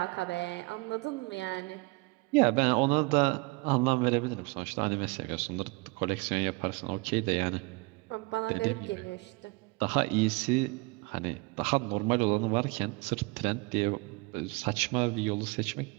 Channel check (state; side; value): quieter; left; 26.9 dB